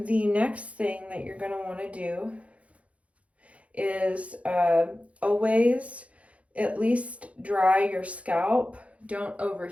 next thing that you're going to want to do is always at least dry your scalp. Don't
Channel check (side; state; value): left; late; 0.064 ms